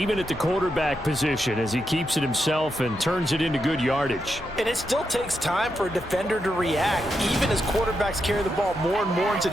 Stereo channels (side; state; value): both; normal; correlation 0.84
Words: at the quarterback position, as he keeps it himself and turns it into good yardage. And it still takes time for a defender to react, even as quarterbacks carry the ball more and more in